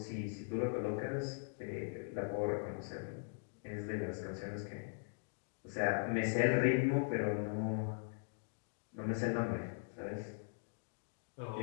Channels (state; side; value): silent; right; digital silence